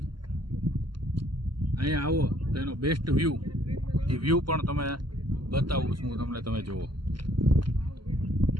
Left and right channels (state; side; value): late; left; 0.72 ms